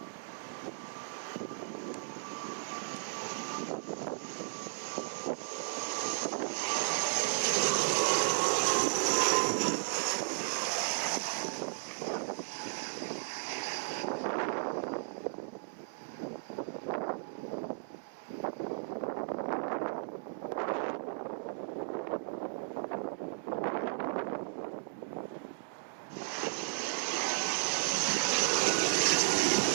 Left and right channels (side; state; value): left; silent; digital silence